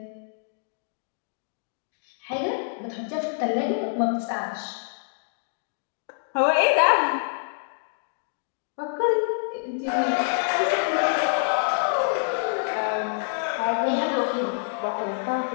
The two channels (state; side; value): silent; right; digital silence